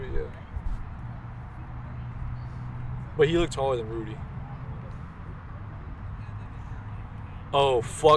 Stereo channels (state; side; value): identical; both; correlation 1.00